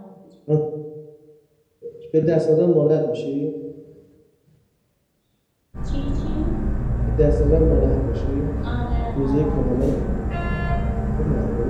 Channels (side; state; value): both; identical; correlation 1.00